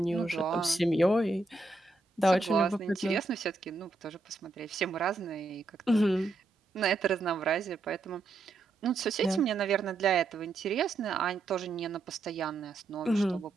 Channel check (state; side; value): quieter; left; 3.4 dB